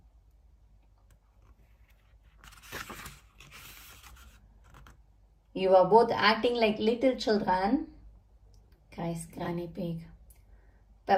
You are both acting like little children, cries Granny Pig.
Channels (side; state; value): both; identical; correlation 1.00